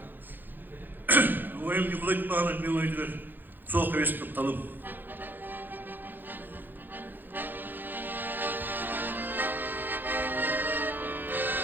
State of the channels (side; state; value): left; late; 0.091 ms